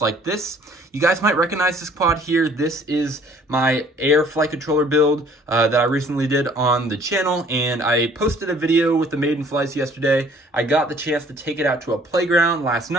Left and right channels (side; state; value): both; normal; correlation 0.57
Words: this. You guys might recognize this quad here. This is my air flight controller build that I recently did on the channel, and I posted a video with the maiden flights yesterday. I got the chance to take it out to a playground last